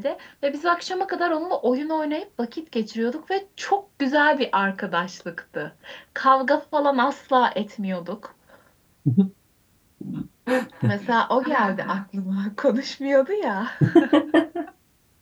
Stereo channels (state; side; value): identical; both; correlation 1.00